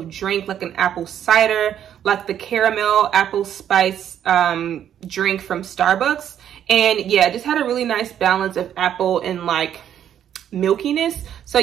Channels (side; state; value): left; quieter; 9.9 dB